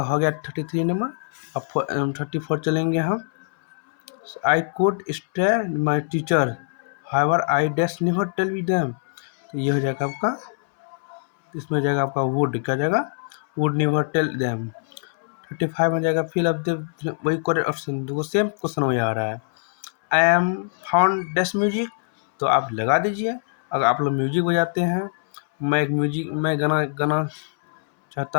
हो गया 33 नंबर। अब 34 चलेंगे हम। I could stay my teacher however I dash never tell with them, तो ये हो जाएगा आपका, इसमें हो जाएगा आपका वुड, क्या जाएगा, वुड नेवर टेल देम। 35 में जाएगा फिल अप द वही करेक्ट ऑप्शन, देखो सेम क्वेश्चन वही आ रहा है। I M found dash music, तो आप लगा दीजिए। अगर आप लोग म्यूजिक बजाते हैं, मैं गाना गाना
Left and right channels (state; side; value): silent; right; 63 dB below the other